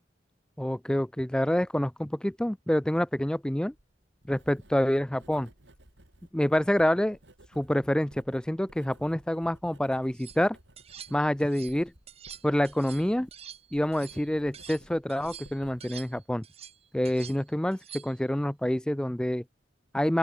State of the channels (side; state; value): both; normal; correlation 0.98